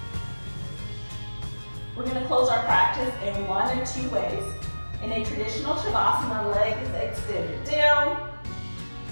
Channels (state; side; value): inverted; both; correlation -1.00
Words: We're going to close our practice in one of two ways. In a traditional Shavasana, legs extended down,